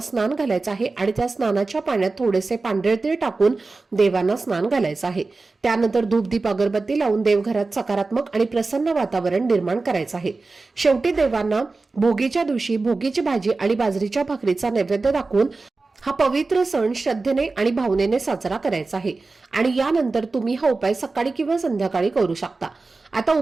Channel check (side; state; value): left; quieter; 3.7 dB